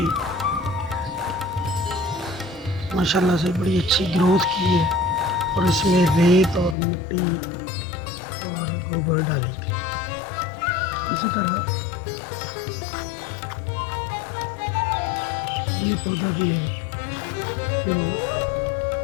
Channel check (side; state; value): right; drops out; at 6.8 s